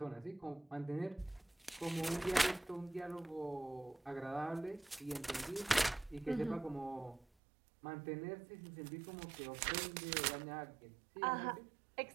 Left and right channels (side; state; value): left; drops out; at 7.2 s